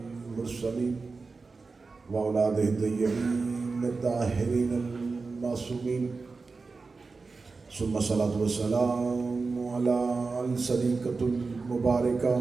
وأولاده الطيبين الطاهرين المعصومين ثم الصلاة والسلام على الصديقة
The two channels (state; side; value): quieter; left; 4.2 dB